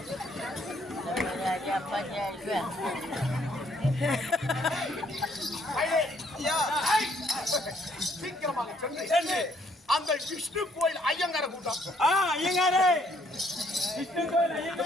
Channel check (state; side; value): normal; both; correlation 0.67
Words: சீக்கிரமாக சென்று அந்த விஷ்ணு கோயில் ஐயங்கார கூட்டம். ஐயங்காரே, விஷ்ணு கோயில்